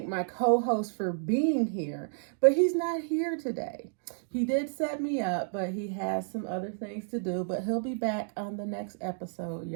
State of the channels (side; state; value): left; silent; digital silence